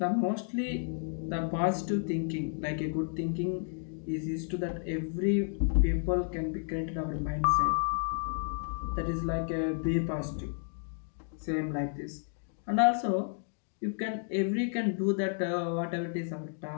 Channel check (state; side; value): silent; right; 57 dB below the other